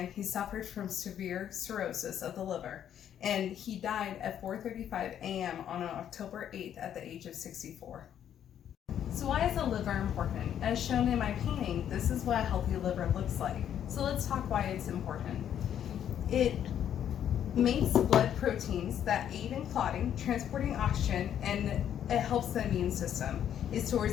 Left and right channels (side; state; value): right; quieter; 9.8 dB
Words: he suffered from severe cirrhosis of the liver, and he died at 4:35 a.m. on October 8th at the age of 64. So why is the liver important? As shown in my painting, this is what a healthy liver looks like. So let's talk why it's important. It makes blood proteins that aid in clotting, transporting oxygen, and it helps the immune system. It